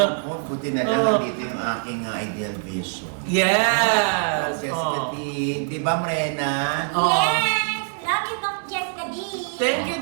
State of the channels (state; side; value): silent; left; digital silence